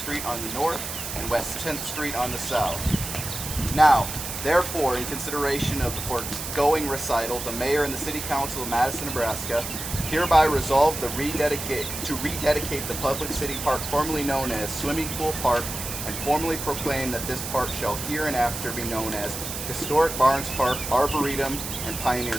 on the north and West 10th Street on the south. Now, therefore, in consideration of the foregoing recital, the Mayor and the City Council of Madison, Nebraska hereby resolve to rededicate the public city park formerly known as Swimming Pool Park, and formally proclaim that this park shall hereinafter be known as Historic Barnes Park, Arboretum, and Pioneer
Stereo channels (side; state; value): right; noise; hiss, 6 dB below the sound